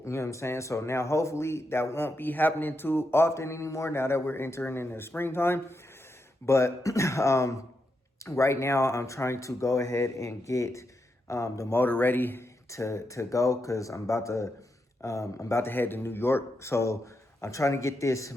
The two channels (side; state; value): both; normal; correlation 0.84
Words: You know what I'm saying? So now hopefully that won't be happening too often anymore now that we're entering into springtime. But right now I'm trying to go ahead and get the motor ready to go because I'm about to head to New York. So I'm trying to get this